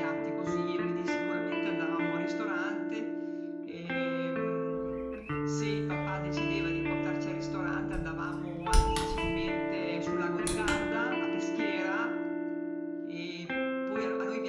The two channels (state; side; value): identical; both; correlation 1.00